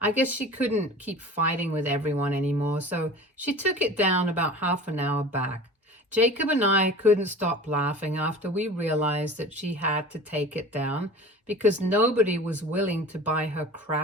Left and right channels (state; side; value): normal; both; correlation 0.39